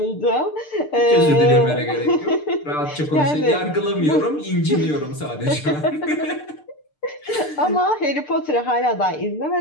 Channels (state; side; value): late; right; 6.7 ms